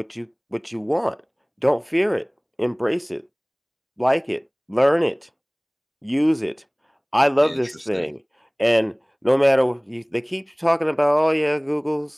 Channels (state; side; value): identical; both; correlation 1.00